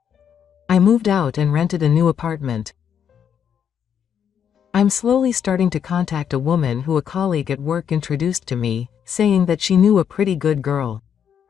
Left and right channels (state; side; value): quieter; right; 8.3 dB